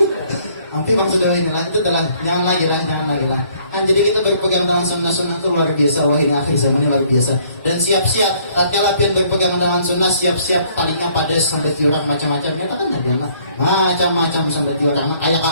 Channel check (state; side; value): inverted; both; correlation -0.62